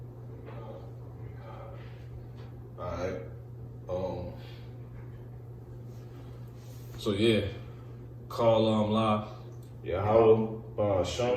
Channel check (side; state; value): both; identical; correlation 1.00